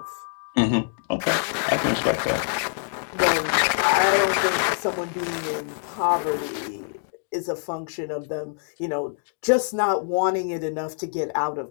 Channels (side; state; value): right; silent; 62 dB below the other